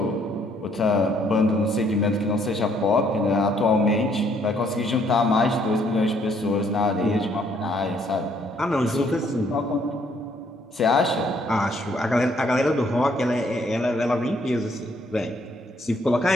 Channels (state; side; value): normal; both; correlation 0.67